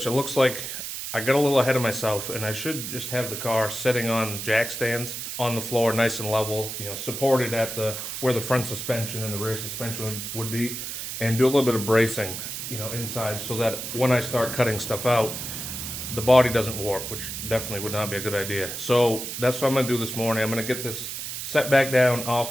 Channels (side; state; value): right; noise; hiss, 6 dB below the sound